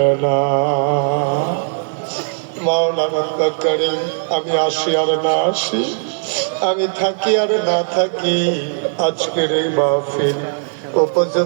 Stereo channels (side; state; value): left; silent; digital silence